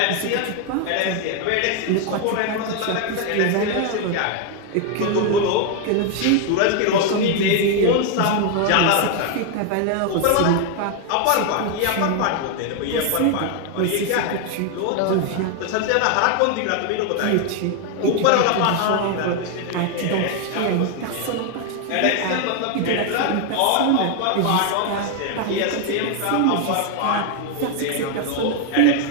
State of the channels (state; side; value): different; both; correlation 0.01